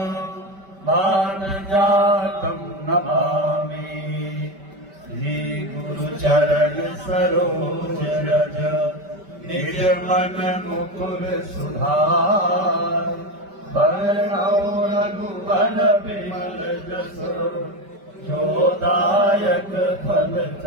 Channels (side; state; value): left; late; 5.1 ms